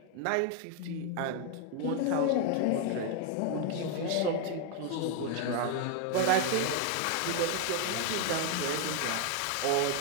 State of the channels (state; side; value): different; both; correlation 0.01